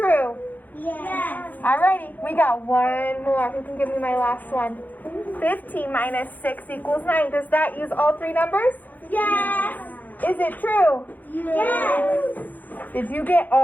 Yes. Alrighty, we got one more. Who can give me my last one? 15 minus 6 equals 9. Does that use all 3 numbers? Yes. Is it true? Yes. Did you get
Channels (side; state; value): right; late; 0.084 ms